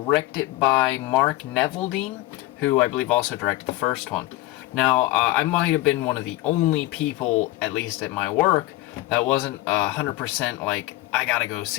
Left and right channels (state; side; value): quieter; right; 17.3 dB